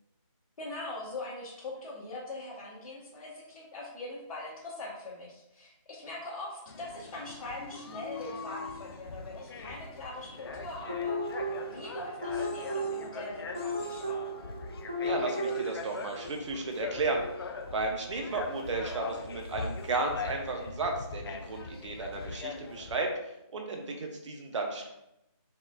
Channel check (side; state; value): both; inverted; correlation -0.33